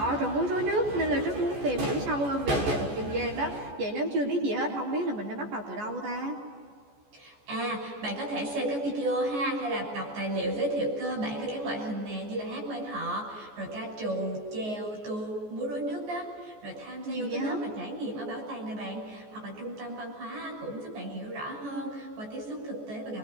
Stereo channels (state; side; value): late; left; 14 ms